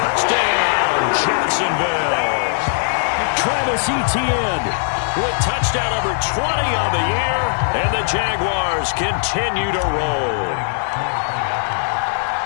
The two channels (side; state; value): right; silent; digital silence